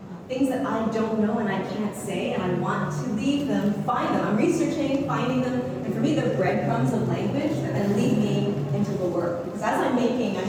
things that I don't know and I can't say, and I want to leave them, find them. I'm researching, finding them, and for me they're breadcrumbs of language that then lead me into the work. Because as I'm making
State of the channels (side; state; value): both; identical; correlation 1.00